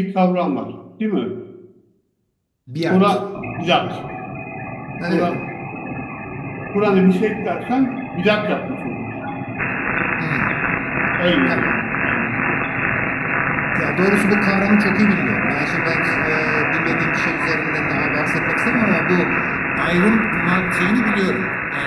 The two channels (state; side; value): identical; both; correlation 1.00